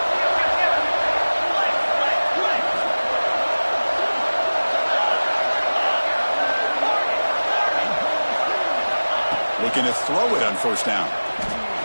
Looking to throw it on first down.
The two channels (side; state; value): both; inverted; correlation -1.00